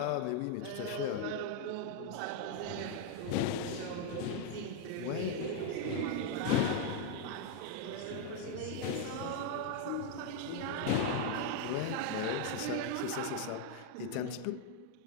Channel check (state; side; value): different; both; correlation 0.00